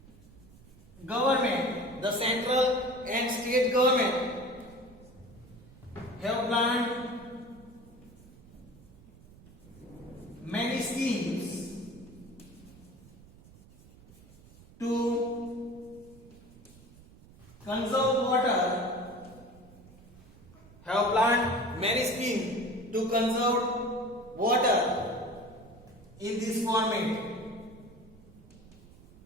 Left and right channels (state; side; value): noise; right; rumble, 22 dB below the sound